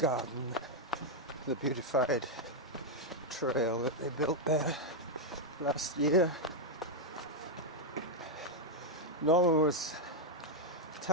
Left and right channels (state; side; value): normal; both; correlation 0.00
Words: the beautified trail that they built there last year. Norman was